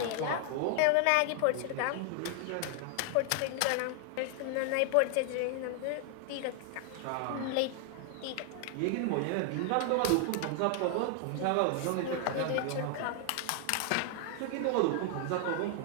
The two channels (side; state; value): both; different; correlation 0.00